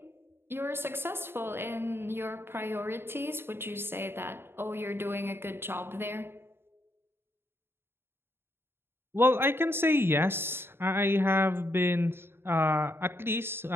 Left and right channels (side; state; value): left; late; 0.11 ms